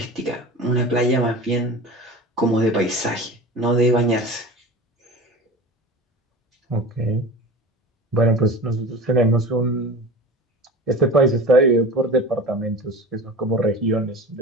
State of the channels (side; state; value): both; normal; correlation 0.34